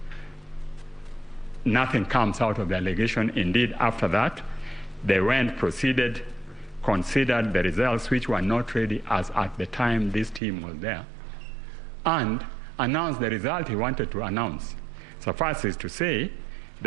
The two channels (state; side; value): drops out; left; at 10.4 s